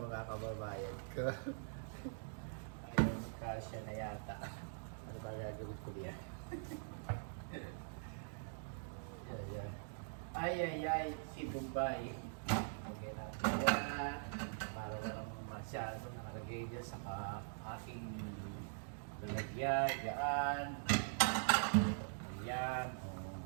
kababayan ko. Ayun, kasya na yata. Ano ba gagawin ko diyan? Ay, si Bombay. Okay natin yan. Para walang masyado nakalagay dyan sa ating lalagyan. Yan. Ayan. O,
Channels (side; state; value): left; silent; digital silence